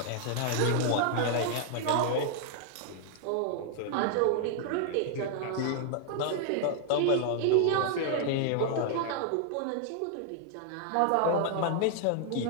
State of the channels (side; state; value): both; different; correlation 0.00